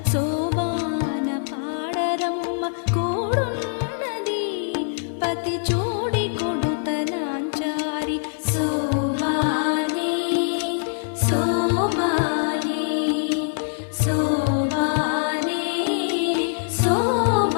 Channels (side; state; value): right; silent; digital silence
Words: శోభాన పాడరమ్మ కూడున్నది పతి చూడి కొడుక నాంచారి శోభానే శోభానే శోభానే